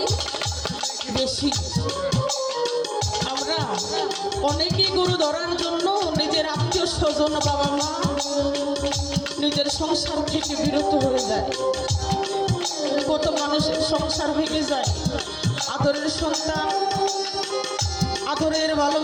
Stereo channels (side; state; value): both; identical; correlation 1.00